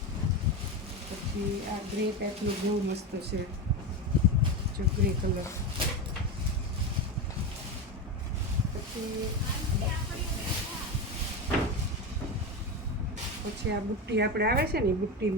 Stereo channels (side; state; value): both; normal; correlation 0.18